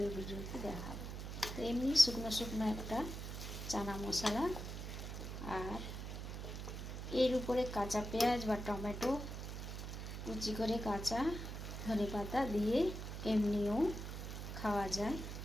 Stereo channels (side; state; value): right; noise; hum, 6 dB below the sound